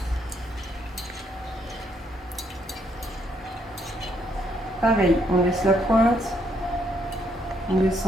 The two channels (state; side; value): normal; both; correlation 0.72